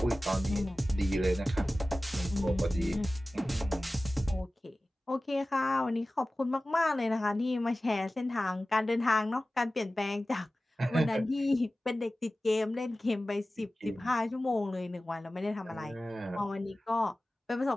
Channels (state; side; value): normal; both; correlation 0.96